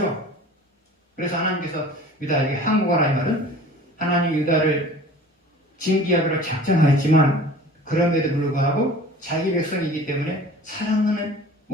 그래서 하나님께서 유다에게 항복하라 이 말은 하나님 유다를 징계하기로 작정하였지만 그럼에도 불구하고 자기 백성이기 때문에 사랑하는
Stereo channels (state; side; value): normal; both; correlation 0.44